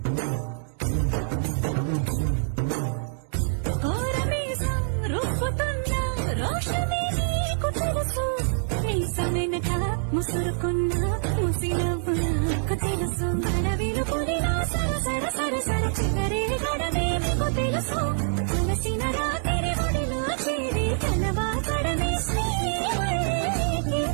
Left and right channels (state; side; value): silent; left; digital silence